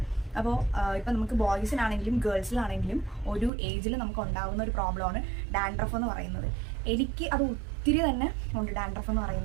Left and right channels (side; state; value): left; drops out; at 3.5 s